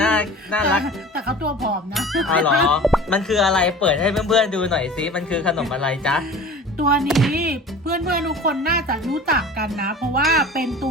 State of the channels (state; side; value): normal; both; correlation 0.39